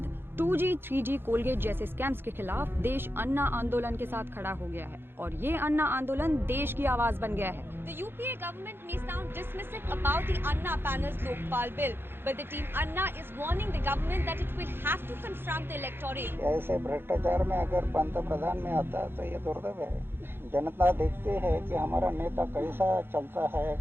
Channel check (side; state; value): left; late; 0.10 ms